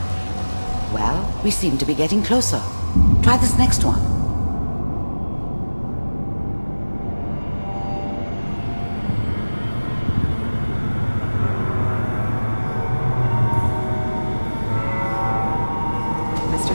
Well, we seem to be getting closer. Try this next one. Mr.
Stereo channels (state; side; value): inverted; both; correlation -1.00